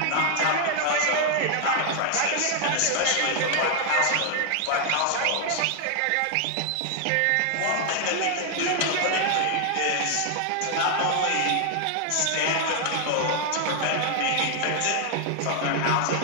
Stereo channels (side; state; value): both; different; correlation 0.00